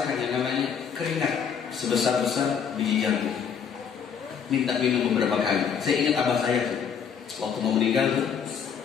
yang namanya keringat sebesar-besar biji jambu. Minta minum beberapa kali. Saya ingat abah saya tuh, waktu mau meninggal tuh,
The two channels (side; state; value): right; quieter; 7.2 dB